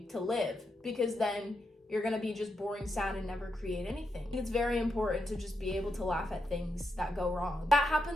to live, because then you're gonna be just boring, sad, and never create anything. It's very important to just be able to laugh at things that go wrong. That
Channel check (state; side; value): normal; both; correlation 0.84